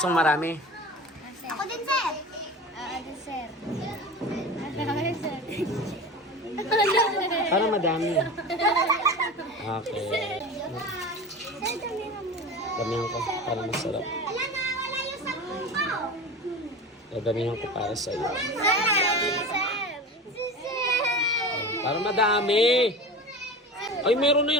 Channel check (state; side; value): normal; both; correlation 0.32